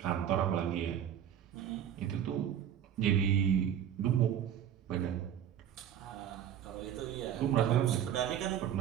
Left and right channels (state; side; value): quieter; left; 9.8 dB